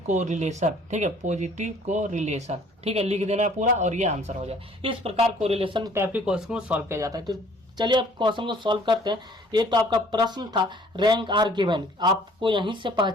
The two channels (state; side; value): normal; both; correlation 0.56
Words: कोरिलेशन। ठीक है, पॉजिटिव कोरिलेशन। ठीक है, लिख देना है पूरा और ये आंसर हो जाए। इस प्रकार कोरिलेशन टाइप के क्वेश्चन को सॉल्व किया जाता है। तो चलिए अब क्वेश्चन को सॉल्व करते हैं। ये तो आपका प्रश्न था रैंक आर गिवन, आपको यहीं से